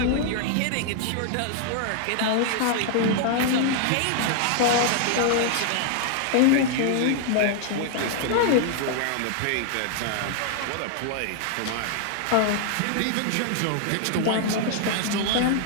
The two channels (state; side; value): different; both; correlation 0.00